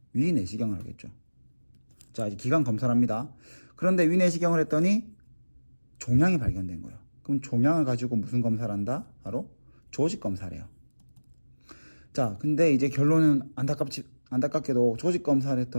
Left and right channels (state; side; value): inverted; both; correlation -1.00